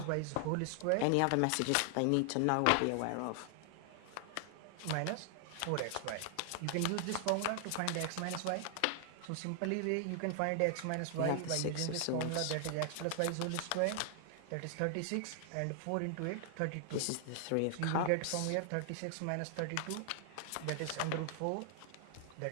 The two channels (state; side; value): different; both; correlation 0.00